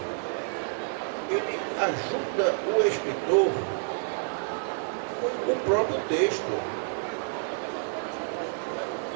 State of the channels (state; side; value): silent; left; 59 dB below the other